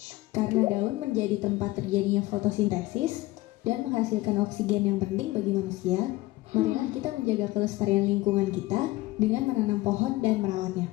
Karena daun menjadi tempat terjadinya fotosintesis dan menghasilkan oksigen yang penting bagi manusia, marilah kita menjaga kelestarian lingkungan kita dengan menanam pohon dan merawatnya.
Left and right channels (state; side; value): quieter; right; 19.1 dB